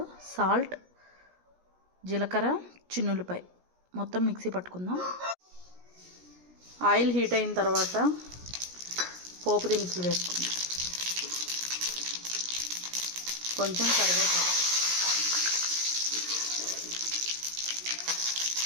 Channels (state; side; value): late; left; 17 ms